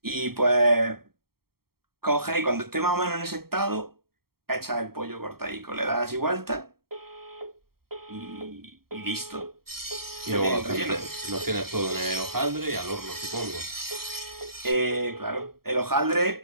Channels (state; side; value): late; left; 0.94 ms